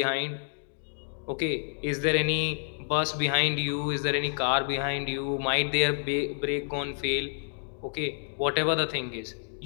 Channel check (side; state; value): right; silent; digital silence